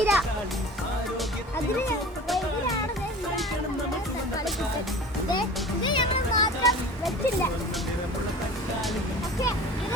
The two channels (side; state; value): both; normal; correlation 0.39